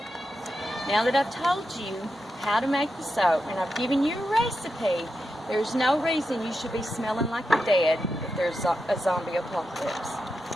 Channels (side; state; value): both; normal; correlation 0.88